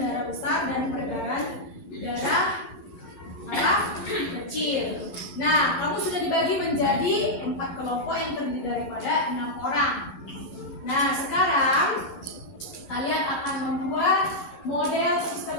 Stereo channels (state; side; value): late; right; 12 ms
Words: darah besar dan peredaran darah kecil. Nah, kamu sudah dibagi menjadi 4 kelompok yang terdiri daripada 6 orang. Nah, sekarang kalian akan membuat model